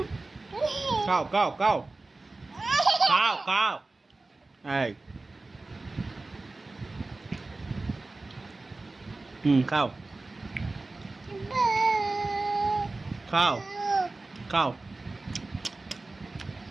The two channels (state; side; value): quieter; left; 3.3 dB